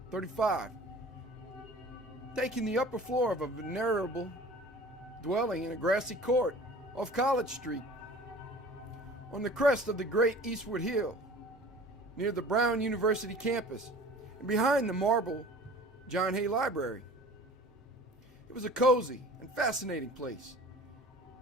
taking the upper floor of a venerable dwelling in a grassy court off College Street, on the crest of the great Eastwood Hill, near the Brown University campus, and behind the marble John Hay Library. It was a cozy and fascinating place,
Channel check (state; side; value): normal; both; correlation 0.44